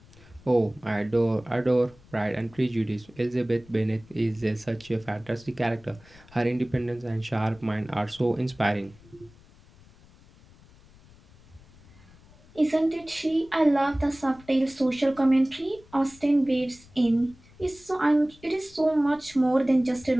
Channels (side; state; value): left; noise; rumble, 25 dB below the sound